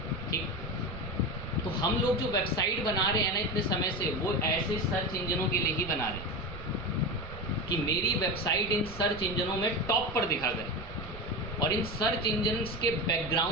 ठीक। तो हम लोग जो वेबसाइट बना रहे हैं ना इतने समय से, वो ऐसे सर्च इंजनों के लिए ही बना रहे हैं कि मेरी वेबसाइट इन सर्च इंजनों में टॉप पर दिखा करे। और इन सर्च इंजन्स के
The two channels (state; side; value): noise; right; rumble, 14 dB below the sound